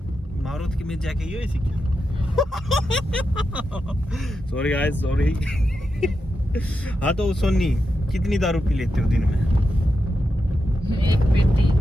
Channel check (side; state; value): both; normal; correlation 0.87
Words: मारो कि मैं जाके यो ऐसी क्या। Sorry guys sorry. हाँ तो सोनी कितनी दारू पी लेते हो दिन में?